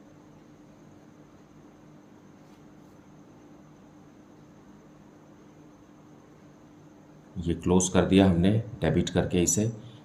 ये क्लोज कर दिया हमने डेबिट करके इसे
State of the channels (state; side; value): identical; both; correlation 1.00